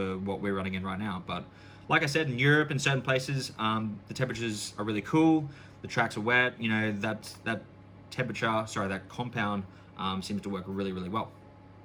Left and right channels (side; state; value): both; identical; correlation 1.00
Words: what we're running in right now. But like I said, in Europe and certain places, the temperatures are really cool. The tracks are wet. You know, that compound seems to work really, really well.